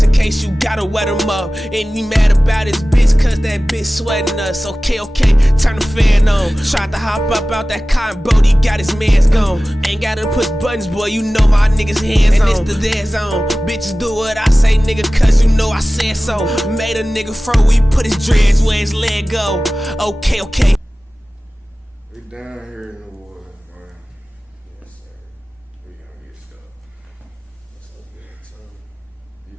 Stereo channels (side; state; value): both; normal; correlation 0.97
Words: in case you gotta wet them up. And you mad about his bitch, cause that bitch sweating us. Okay, turn the fan on. Tried to hop up out that car, and Brody got his mans gone. Ain't gotta push buttons, boy, you know my niggas hands on. And it's the dead zone. Bitches do what I say, nigga, cause you know I said so. Made a nigga fro, we put his dreads where his leg go. Okay. We down here in the woods, man. Yes, sir. We gonna get stuck. What's up, man? You